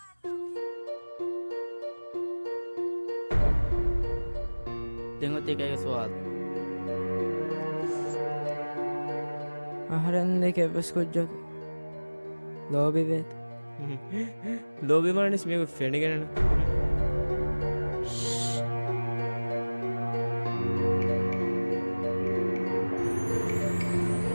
tengo tiga سؤال أهرن كيف بس كوجك لوبي بيت لوبي ما نسميه فيني كنا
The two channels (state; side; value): inverted; both; correlation -1.00